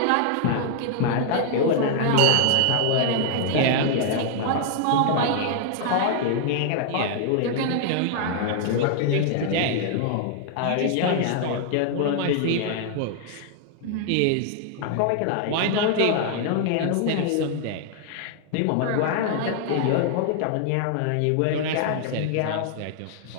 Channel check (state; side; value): different; both; correlation -0.01